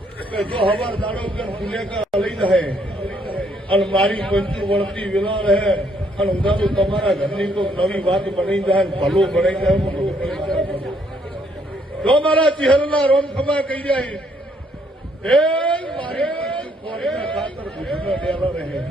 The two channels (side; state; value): both; normal; correlation 0.69